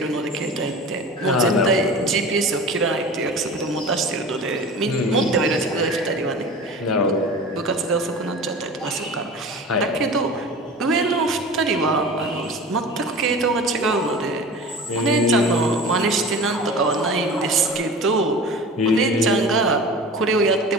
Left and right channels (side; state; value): both; normal; correlation 0.36